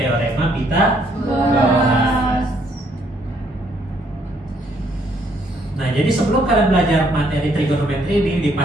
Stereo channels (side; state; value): both; normal; correlation 0.68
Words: Pitagoras. Nah, jadi sebelum kalian belajar materi trigonometri ini,